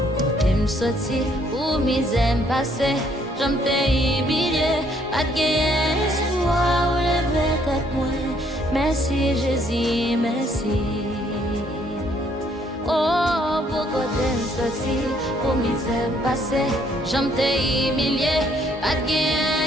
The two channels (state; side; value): normal; both; correlation 0.66